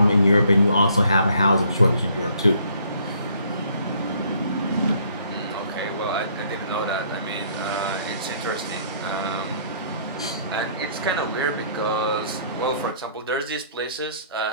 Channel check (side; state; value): both; inverted; correlation -0.62